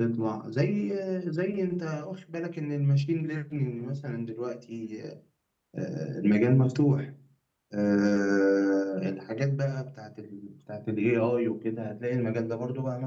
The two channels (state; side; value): identical; both; correlation 1.00